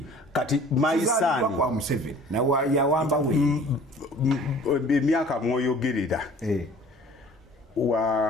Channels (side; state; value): both; normal; correlation 0.49